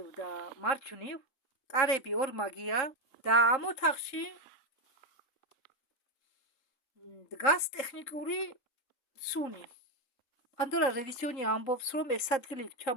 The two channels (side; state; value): right; late; 3.7 ms